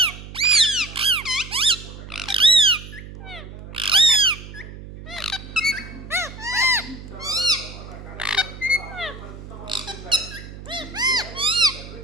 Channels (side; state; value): right; noise; hum, 14 dB below the sound